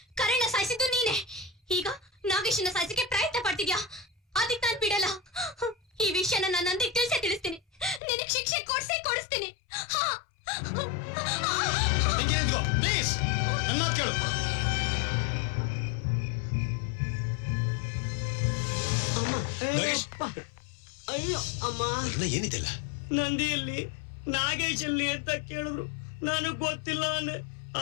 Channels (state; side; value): drops out; right; at 8.0 s